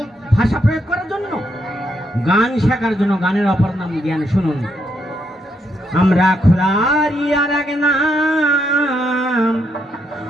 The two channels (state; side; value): normal; both; correlation 0.77